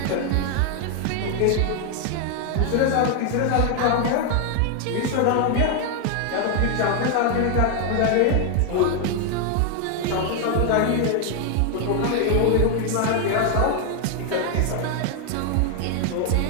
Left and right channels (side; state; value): both; different; correlation 0.01